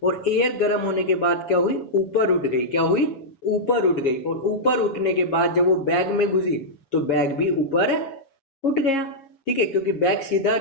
और एयर गर्म होने के बाद क्या हुई, ऊपर उठ गई। क्या हुई, ऊपर उठ गई, और ऊपर उठने के बाद जब वो बैग में घुसी तो बैग भी ऊपर उठ गया। ठीक है, क्योंकि बैग सीधा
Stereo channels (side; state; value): right; late; 7.6 ms